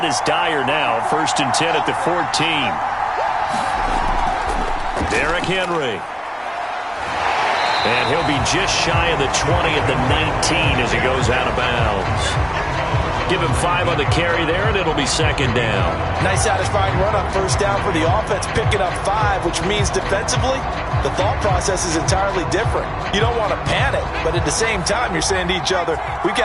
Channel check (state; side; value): identical; both; correlation 1.00